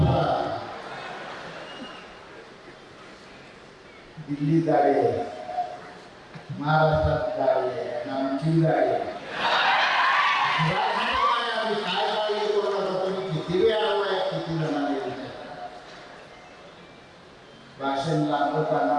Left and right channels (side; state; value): both; identical; correlation 1.00